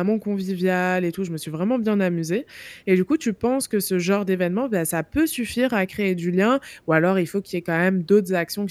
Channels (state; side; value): identical; both; correlation 1.00